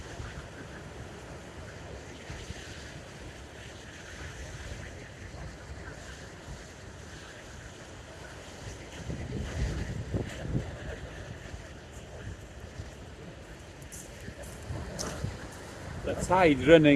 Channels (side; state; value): both; identical; correlation 1.00